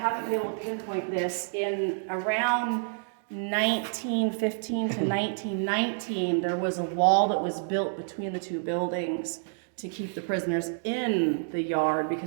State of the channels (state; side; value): silent; left; digital silence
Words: been able to pinpoint this, in around 1915 to 1919, there was a wall that was built between the two buildings to keep the prisoners in the yard,